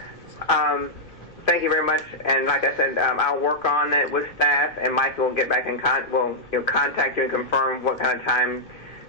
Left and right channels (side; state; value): both; normal; correlation -0.07